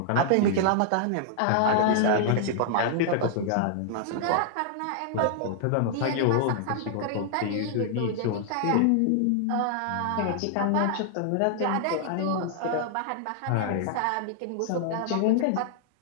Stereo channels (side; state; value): both; different; correlation -0.01